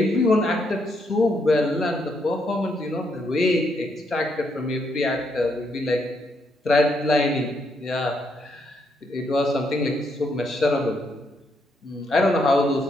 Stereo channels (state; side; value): normal; both; correlation 0.76